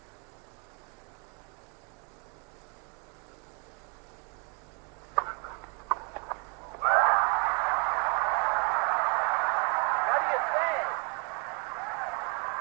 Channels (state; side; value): quieter; left; 34.5 dB